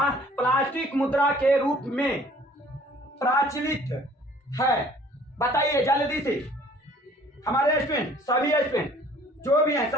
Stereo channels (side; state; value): both; normal; correlation 0.54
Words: प्लास्टिक मुद्रा के रूप में प्रचलित है? बताइए जल्दी से हमारे स्टूडेंट, सभी स्टूडेंट जो भी हैं